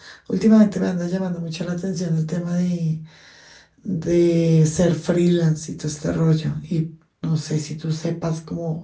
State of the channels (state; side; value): identical; both; correlation 1.00